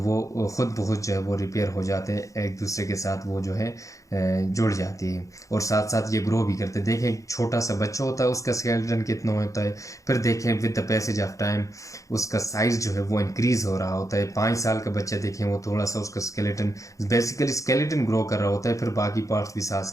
खुद ब खुद जो है वो रिपेयर हो जाते हैं, एक दूसरे के साथ वो जो है जुड़ जाती है और साथ साथ ये ग्रो भी करते हैं। देखें एक छोटा सा बच्चा होता है उसका स्केलेटन कितना होता है, फिर देखें with the passage of time उसका साइज़ जो है वो इंक्रीज़ हो रहा होता है। 5 साल का बच्चा देखें वो थोड़ा सा उसका स्केलेटन, बेसिकली स्केलेटन ग्रो कर रहा होता है, फिर बाकी पार्ट्स भी साथ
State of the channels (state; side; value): late; right; 0.16 ms